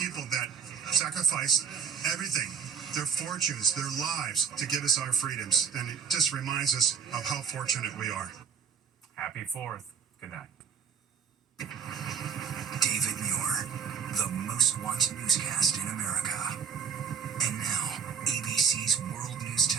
that sacrificed everything, their fortunes, their lives, to give us our freedoms. And it just reminds us of how fortunate we are. Happy 4th. Good night. David Muir, the most watched newscast in America. And now, ABC's World News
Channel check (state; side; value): quieter; left; 6.8 dB